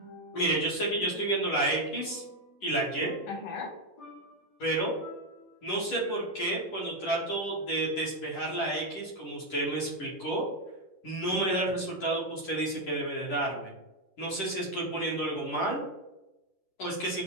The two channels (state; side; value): late; right; 10 ms